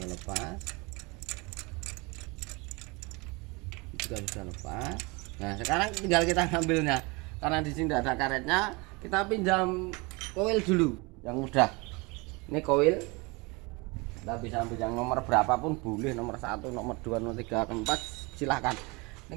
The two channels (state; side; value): quieter; left; 26.9 dB